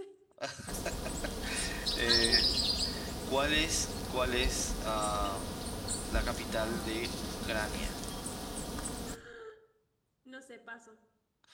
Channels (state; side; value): identical; both; correlation 1.00